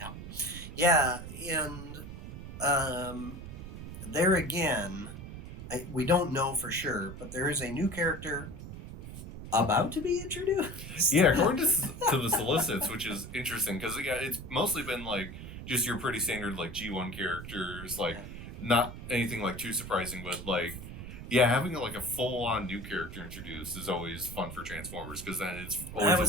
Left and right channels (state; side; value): noise; right; rumble, 10 dB below the sound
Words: And there again, we don't know for sure, but there is a new character about to be introduced. Yeah, according to the solicits, which is interesting because it's mostly been like just your pretty standard like G1 characters, like not anything like too surprising, but like having like a full-on new character introduced is always fun for Transformers, because then it's always. I